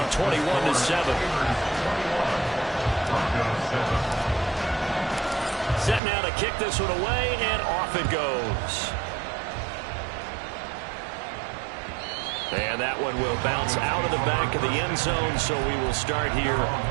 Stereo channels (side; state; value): left; drops out; at 6.0 s